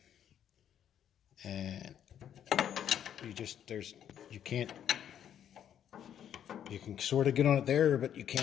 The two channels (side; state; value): right; quieter; 9.7 dB